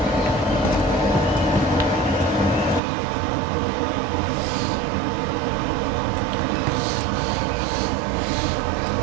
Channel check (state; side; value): drops out; left; at 2.8 s